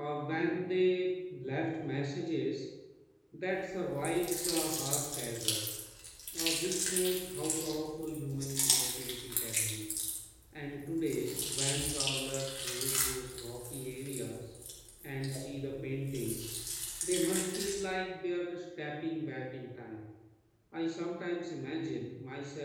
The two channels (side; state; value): both; identical; correlation 1.00